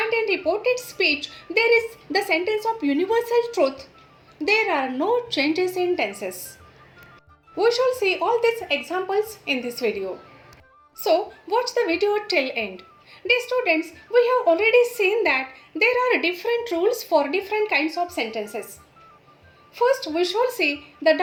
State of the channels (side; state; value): both; identical; correlation 1.00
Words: in reported speech there is the sentence of universal truth, There are no changes in tenses. We shall see all these examples in this video. So, watch the video till end. Dear students, we have already seen that there are different rules for different kinds of sentences. First, we shall see the